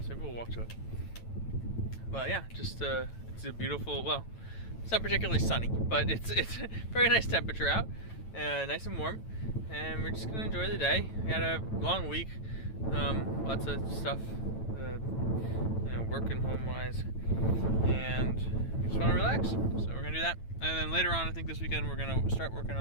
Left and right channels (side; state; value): right; late; 9.0 ms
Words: Maybe we'll walk to it. But yeah, just it's a beautiful. Well, it's not particularly sunny, but it's very nice temperature out, nice and warm, and we're just gonna enjoy the day. We had a long week, lots of stuff, working home-wise, and we just want to relax. So we're gonna do that, and then later on, I think this weekend we're gonna start working